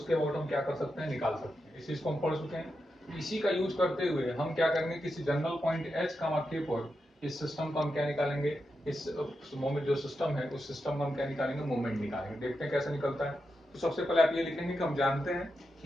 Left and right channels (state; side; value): normal; both; correlation 0.87